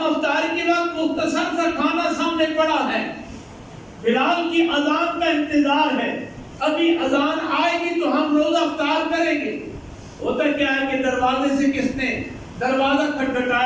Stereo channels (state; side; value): identical; both; correlation 1.00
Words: افطاری کے وقت مختصر سا کھانا سامنے پڑا ہے، بلال کی اذان کا انتظار ہے، ابھی اذان آئے گی تو ہم روزہ افطار کریں گے۔ ہوتا کیا ہے کہ دروازے سے کس نے دروازہ